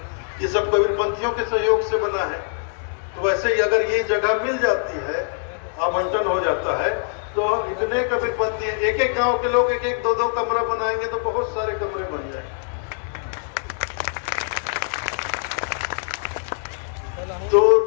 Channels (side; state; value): right; silent; digital silence